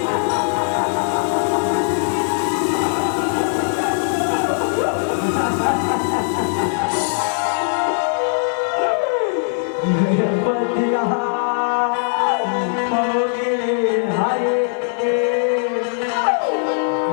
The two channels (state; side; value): silent; right; digital silence